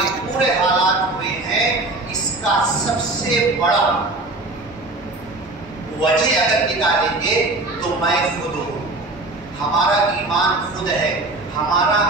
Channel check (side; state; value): left; quieter; 3.0 dB